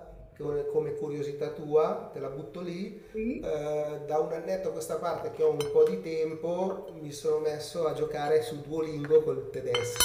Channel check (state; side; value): identical; both; correlation 1.00